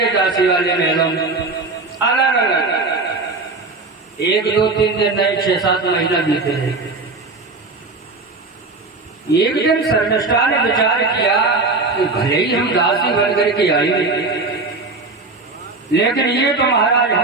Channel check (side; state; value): left; quieter; 3.6 dB